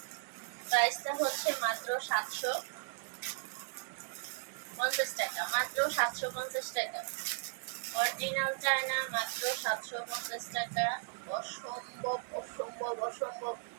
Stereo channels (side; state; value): left; silent; digital silence